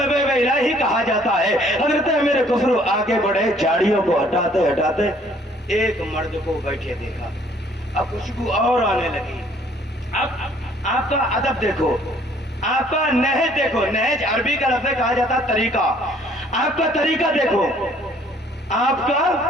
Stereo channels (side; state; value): both; normal; correlation 0.60